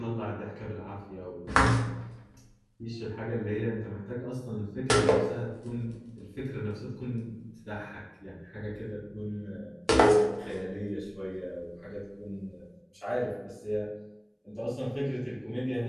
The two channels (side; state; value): both; identical; correlation 1.00